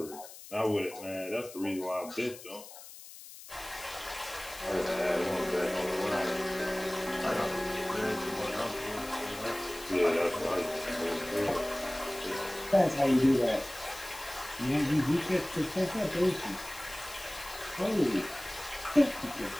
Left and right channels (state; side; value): noise; left; hiss, 16 dB below the sound